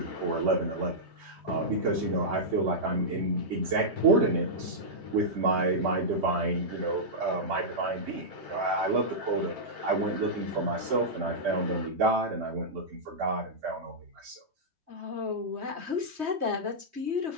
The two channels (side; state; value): left; late; 3.2 ms